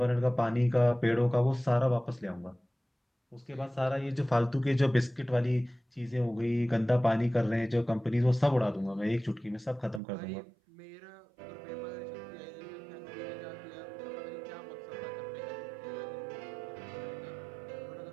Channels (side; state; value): left; drops out; at 10.0 s